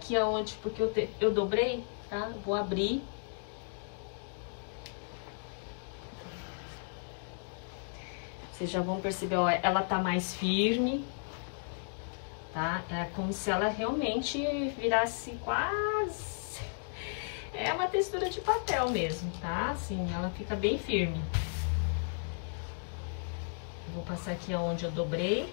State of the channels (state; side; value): silent; right; digital silence